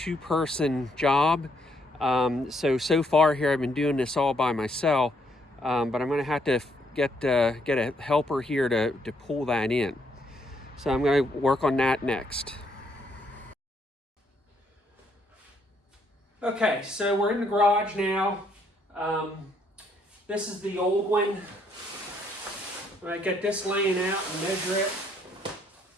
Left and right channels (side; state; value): both; normal; correlation 0.71